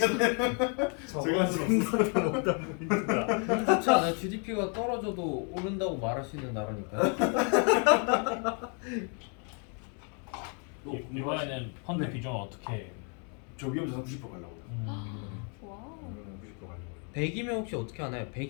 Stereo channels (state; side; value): quieter; right; 39.2 dB